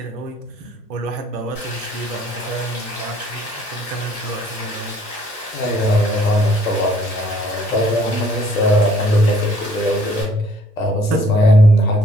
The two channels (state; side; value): normal; both; correlation 0.60